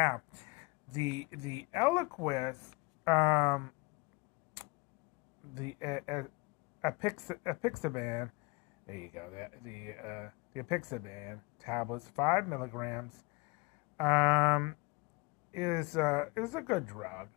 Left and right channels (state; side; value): quieter; right; 26.5 dB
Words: the Eliquis, the apixaban. There you go. The apixaban tablets, 5 milligrams, is a good drug.